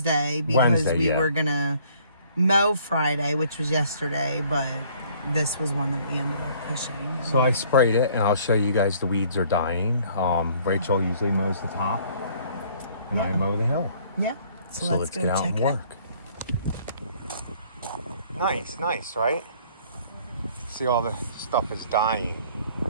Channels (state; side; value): inverted; both; correlation -0.59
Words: because we were gonna mow Friday, which was yesterday, but this was one that we ended up pushing. So I sprayed it, and I'll show you guys the weeds are dying. Rachel usually mows the top, and I mow the hill. Yeah. So let's go get out check and it. work. Nice, right? See, all the stuff is dying.